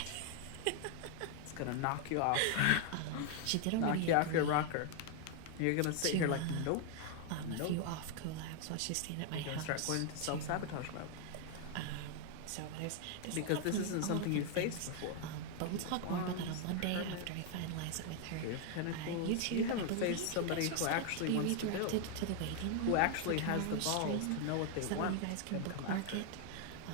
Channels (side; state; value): both; different; correlation 0.00